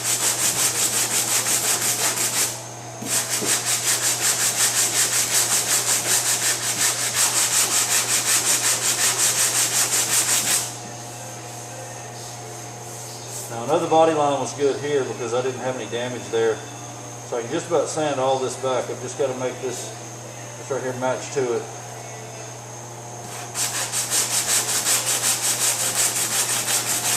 Now another body line was good here because I didn't have any damage there. So I can just about sand all this back. I've just got to make this right here match to it.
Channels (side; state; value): both; identical; correlation 1.00